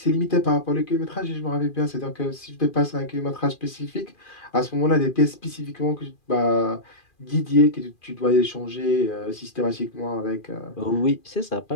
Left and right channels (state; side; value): late; right; 2.4 ms